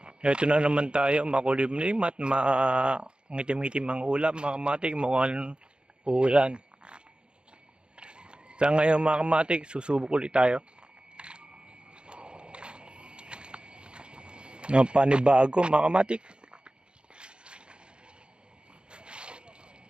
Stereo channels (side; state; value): left; late; 0.053 ms